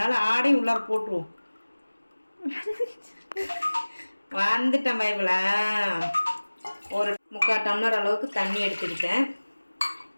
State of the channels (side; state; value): both; inverted; correlation -1.00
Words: ஆடையும் உள்ளார போட்டுருவோம். வந்துட்டேன் பைபிள. ஒரு 3/4 டம்ளர் அளவுக்கு தண்ணி எடுத்துக்கிட்டேன்.